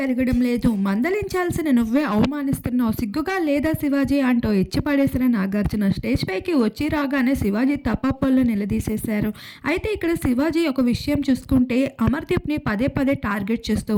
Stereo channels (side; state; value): both; identical; correlation 1.00